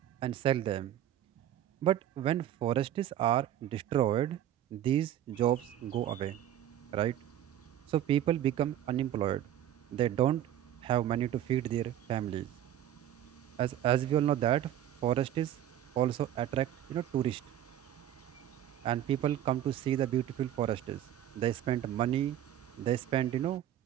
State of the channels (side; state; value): left; quieter; 11.6 dB